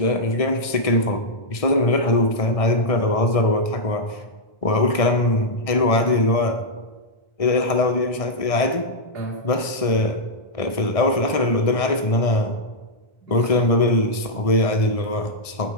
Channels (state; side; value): late; right; 1.6 ms